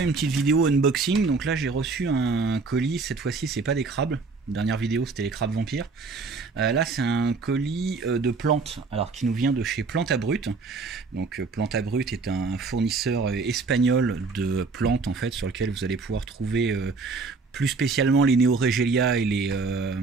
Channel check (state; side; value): quieter; left; 4.3 dB